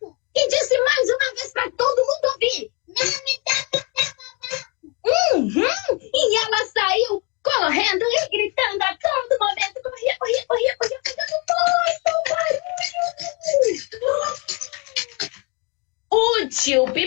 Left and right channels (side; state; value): right; quieter; 32.1 dB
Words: E disse mais uma vez para todo mundo ouvir, não me toca, Zé Babaco! E ela saiu correndo e gritando a todo momento, corria, fazendo muito barulho. O tio